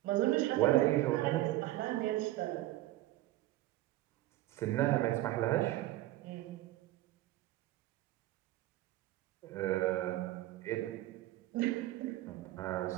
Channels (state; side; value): quieter; left; 16.2 dB